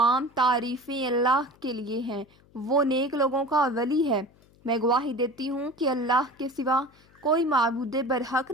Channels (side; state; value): left; noise; hum, 29 dB below the sound